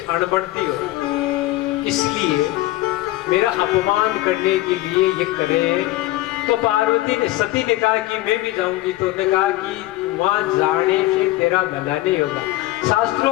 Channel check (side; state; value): right; quieter; 17.3 dB